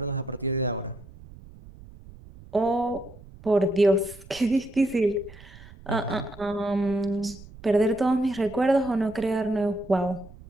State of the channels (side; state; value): right; noise; rumble, 19 dB below the sound